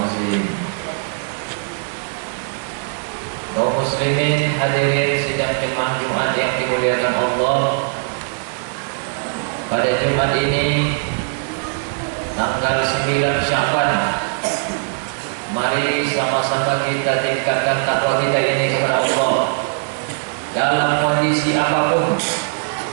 Kaum muslimin hadirin sidang jemaah Jumat yang dimuliakan Allah, pada Jumat ini tanggal 9 Sya'ban, mari sama-sama kita tingkatkan takwa kita ini kepada Allah. Dalam kondisi apapun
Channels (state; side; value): silent; left; digital silence